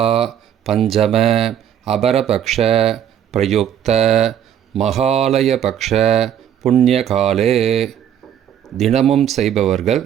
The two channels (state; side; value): quieter; left; 9.7 dB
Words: பஞ்சம அபரபக்ஷ பிரயுக்த மகாலயபக்ஷ புண்ணியகாலே. தினமும் செய்பவர்கள்